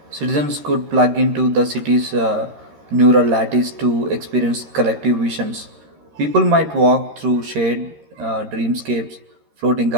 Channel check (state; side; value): late; left; 13 ms